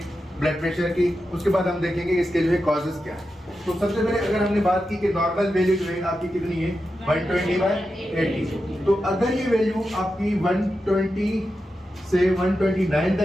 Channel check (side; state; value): both; normal; correlation 0.90